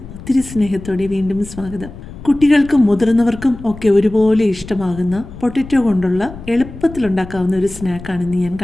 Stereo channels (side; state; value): left; noise; rumble, 15 dB below the sound